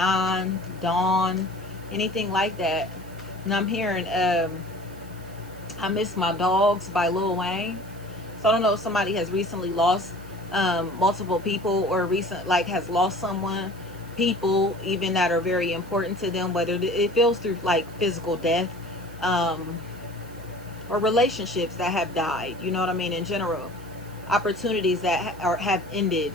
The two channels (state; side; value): noise; right; hiss, 24 dB below the sound